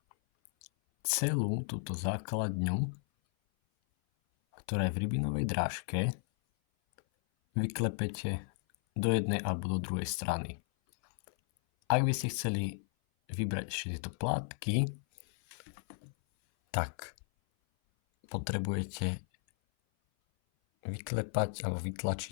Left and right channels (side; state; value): right; silent; 55 dB below the other